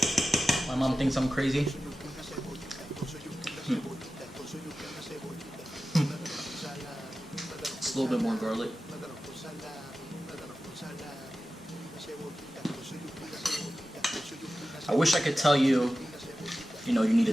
My mom thinks I'm crazy. It's a little bit more garlic. I wish I could tell you, you need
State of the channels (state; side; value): normal; both; correlation 0.94